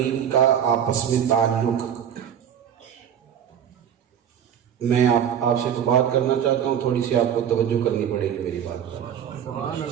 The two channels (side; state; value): left; quieter; 9.0 dB